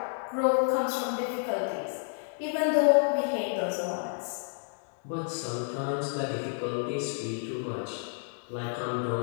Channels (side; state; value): right; silent; 58 dB below the other